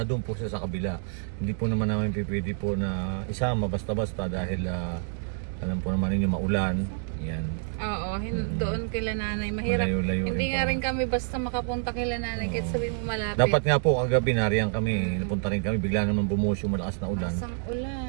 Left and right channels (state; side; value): silent; left; digital silence